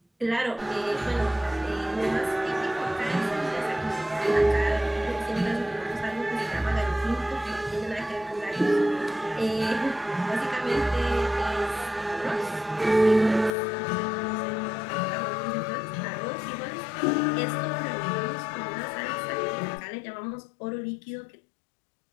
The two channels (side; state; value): right; drops out; at 13.5 s